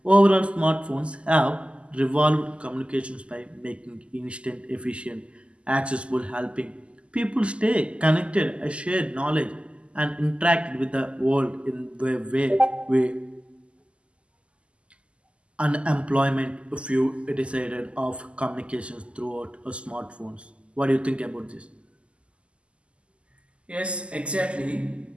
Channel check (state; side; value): late; left; 0.055 ms